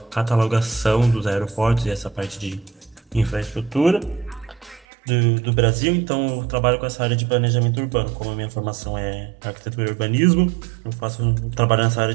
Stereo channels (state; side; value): drops out; left; at 4.9 s